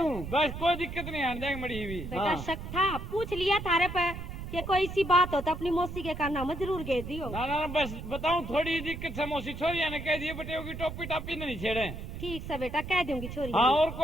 बस कोई दिक्कत नहीं आने जाएंगे मड़ी हुई। बेटा हाँ। शक था पूछ लिया थारे पे कि कोई सी बात हो तो अपनी मौसी के काना में जरूर गए दियो। ना ना बस बताऊं थोड़ी दिक्कत से मौसी छोरी ने कह दिए बटे होगी टोपी टापी नहीं छेड़े। ठीक से बेटा कह दूंगी छोरी हाँ और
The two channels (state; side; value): noise; right; rumble, 8 dB below the sound